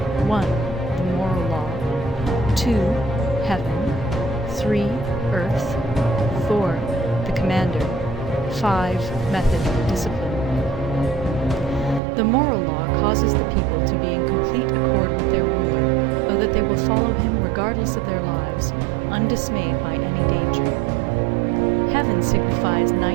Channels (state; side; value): drops out; left; at 12.0 s